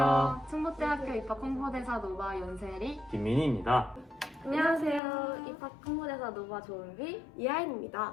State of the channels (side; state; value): right; drops out; at 5.0 s